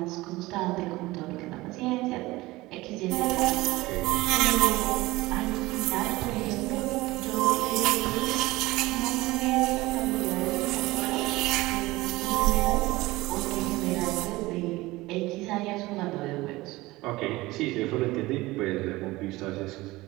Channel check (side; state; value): left; quieter; 19.8 dB